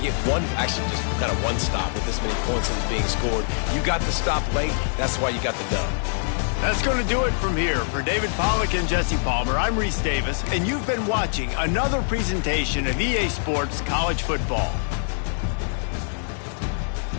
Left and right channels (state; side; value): silent; right; digital silence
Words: get just kind of one stop with this many points that is being scored. You got the stop late. That's why you got the dub. That's going to do it from here. For David Pollack and Jesse Palmer, I'm Reese Davis, and you've been watching another presentation of EA Sports College Football.